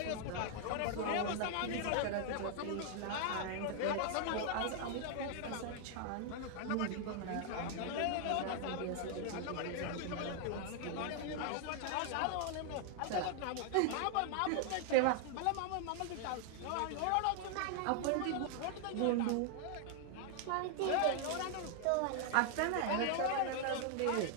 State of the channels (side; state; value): both; different; correlation 0.00